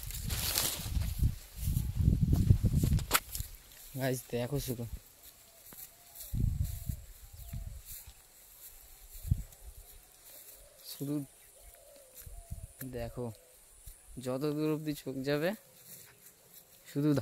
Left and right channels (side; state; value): both; identical; correlation 1.00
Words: গাইস দেখো শুধু শুধু দেখো, যত দূর অব্দি চোখ যাবে শুধু